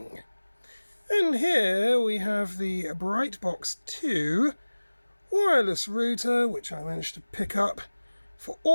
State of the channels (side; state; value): both; inverted; correlation -1.00